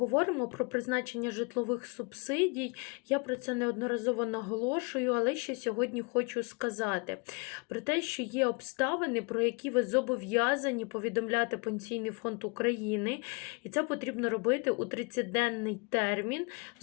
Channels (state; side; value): quieter; right; 31.0 dB